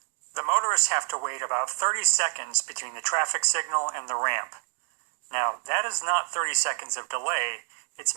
The motorists have to wait about 30 seconds between the traffic signal and the ramp. Now, that is not 30 seconds of delay,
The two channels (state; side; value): silent; left; digital silence